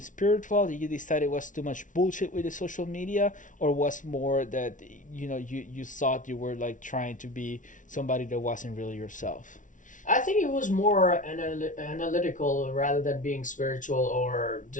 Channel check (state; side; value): late; right; 0.37 ms